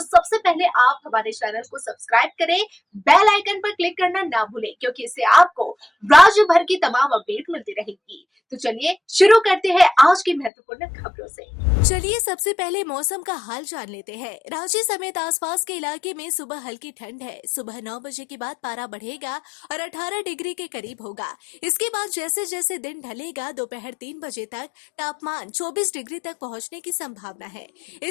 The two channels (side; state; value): right; drops out; at 10.5 s